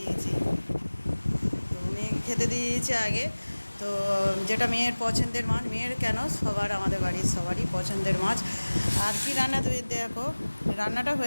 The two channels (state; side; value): inverted; both; correlation -1.00